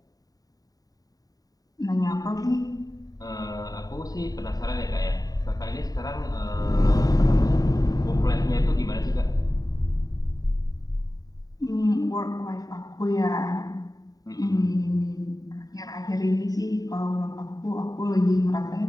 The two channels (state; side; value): late; right; 0.18 ms